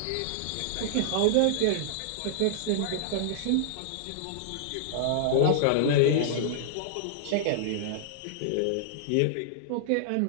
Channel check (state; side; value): different; both; correlation -0.01